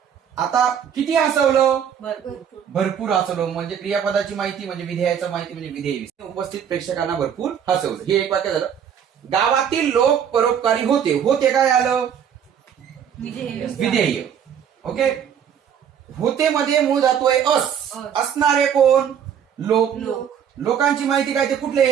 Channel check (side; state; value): left; quieter; 8.4 dB